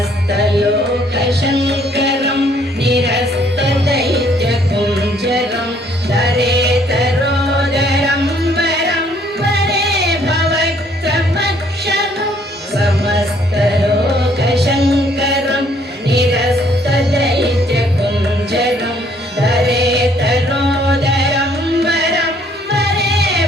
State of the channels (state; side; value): normal; both; correlation 0.64